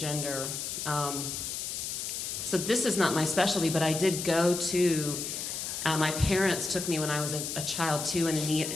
So this is not my specialty, but I did go to, my parents took me when I was a child to an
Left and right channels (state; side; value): noise; left; hiss, 4 dB below the sound